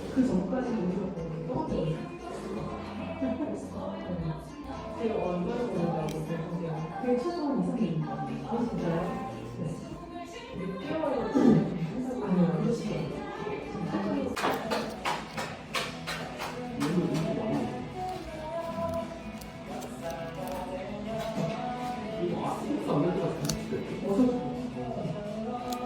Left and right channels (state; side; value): identical; both; correlation 1.00